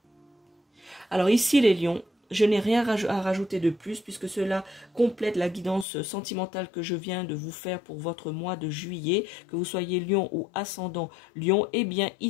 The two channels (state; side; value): drops out; right; at 5.9 s